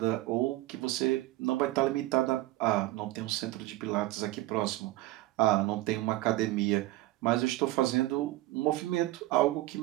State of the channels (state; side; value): quieter; left; 17.5 dB